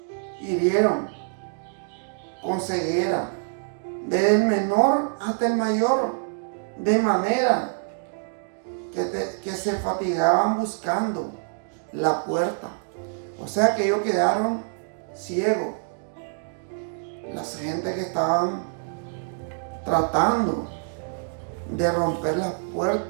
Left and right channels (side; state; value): left; silent; 61 dB below the other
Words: hirieron con ceguera, desde el menor hasta el mayor, de manera que se fatigaban buscando la puerta. O sea que ellos quedaron ciegos. Las gente que estaban tratando de romper las